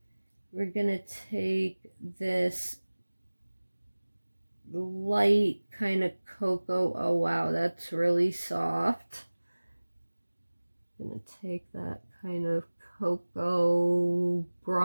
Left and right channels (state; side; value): inverted; both; correlation -1.00